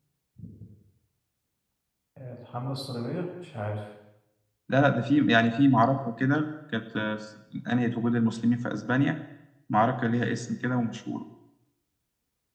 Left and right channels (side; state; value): both; identical; correlation 1.00